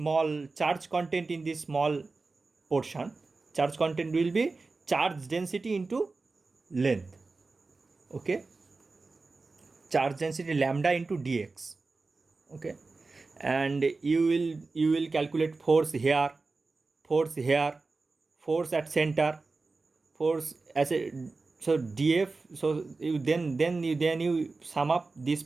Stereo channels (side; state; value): left; quieter; 3.8 dB